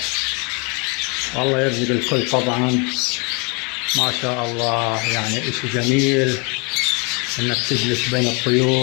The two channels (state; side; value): quieter; right; 31.5 dB